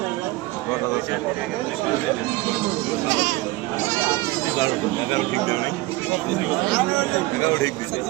এগারো ঠিক দেয় নাই এগারো ঠিক দিচ্ছে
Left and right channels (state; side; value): quieter; left; 19.7 dB